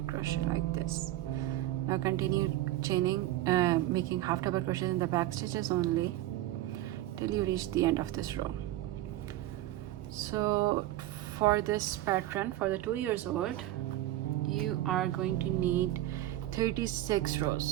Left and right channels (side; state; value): left; quieter; 15.0 dB